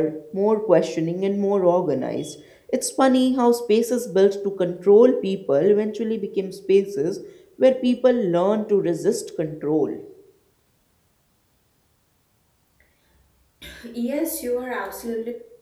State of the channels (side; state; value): both; identical; correlation 1.00